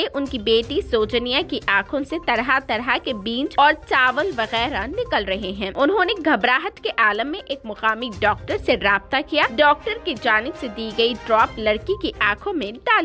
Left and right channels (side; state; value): both; identical; correlation 1.00